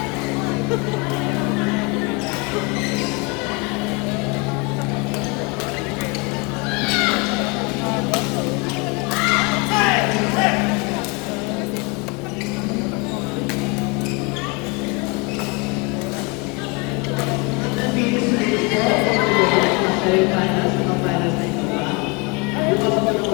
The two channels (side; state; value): right; quieter; 29.1 dB